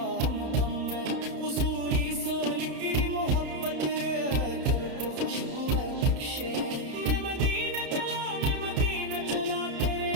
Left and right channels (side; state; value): left; late; 31 ms